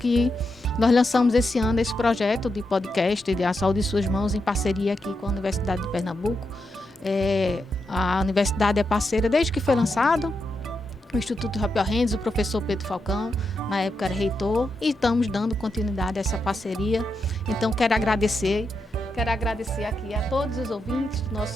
nós lançamos esse ano esse projeto de podcast de A Saúde em Suas Mãos, em parceria aqui com a Universidade de Pernambuco. A universidade é parceira desde que foi lançado. O Instituto Rapel Rendes, o professor Pedro Falcão, na época era reitor, e estamos dando continuidade a essa parceria. Então, quero agradecer aqui a todos os ouvintes do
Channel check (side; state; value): both; normal; correlation 0.85